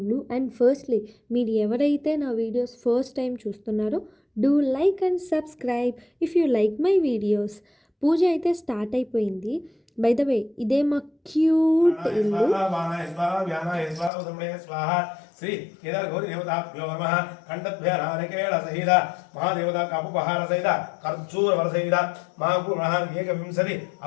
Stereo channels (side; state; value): right; drops out; at 14.1 s